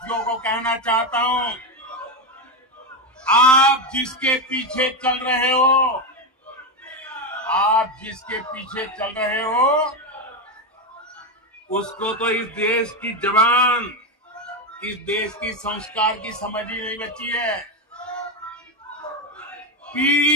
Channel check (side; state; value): both; normal; correlation 0.10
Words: को कहना चाहता हूं, आप जिसके पीछे चल रहे हो, आप जिसके पीछे चल रहे हो, उसको तो इस देश की जवान, इस देश की संस्कार की समझ ही नहीं बची है।